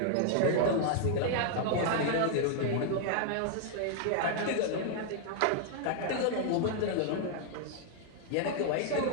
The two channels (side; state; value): both; different; correlation -0.01